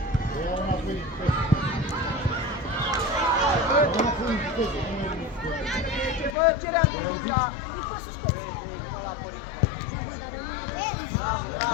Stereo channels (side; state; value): right; drops out; at 6.4 s